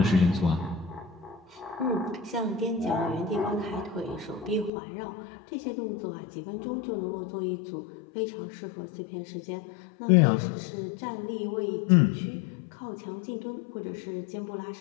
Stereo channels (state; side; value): drops out; right; at 4.7 s